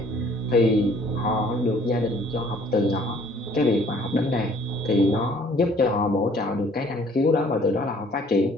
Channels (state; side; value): normal; both; correlation 0.57